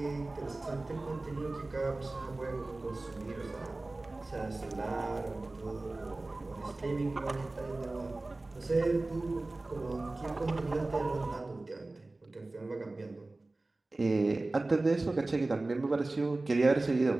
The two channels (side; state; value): left; quieter; 3.0 dB